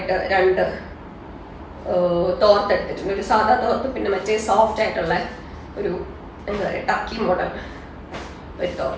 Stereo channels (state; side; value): identical; both; correlation 1.00